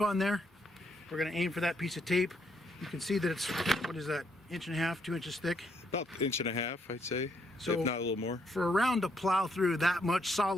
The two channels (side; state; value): both; normal; correlation 0.74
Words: there. We're gonna aim for that piece of tape. You can see that it's, what is that, 1.5 inches, 2 inches thick? About 1.5 inches, I'd say, so if not a little more. For a round to plow through that much